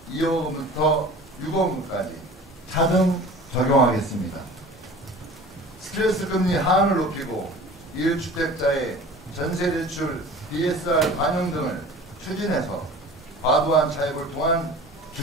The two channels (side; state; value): both; normal; correlation 0.41